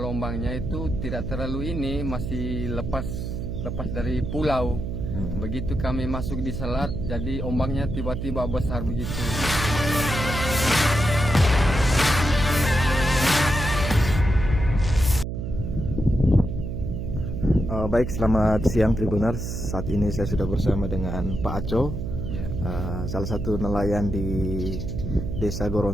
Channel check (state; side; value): noise; right; hum, 4 dB below the sound